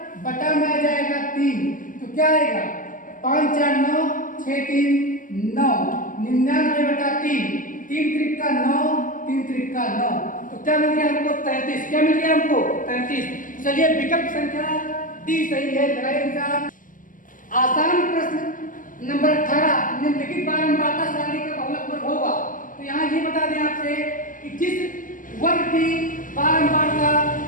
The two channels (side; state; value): right; late; 0.39 ms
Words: बटा में आ जाएगा 3। तो क्या आएगा? 5 4 9 6 3 9 99/3। 3 त्रिक का 9, 3 त्रिक का 9। तो क्या मिल गया हमको? 33। क्या मिल गया हमको? 33। चलिए विकल्प संख्या डी सही है। लगाइए निशान। आसान प्रश्न नंबर 18। निम्नलिखित बारंबारता सारणी का बहुलक वर्ग होगा। तो यहाँ ये बता दें आपसे कि जिस वर्ग की बारंबारता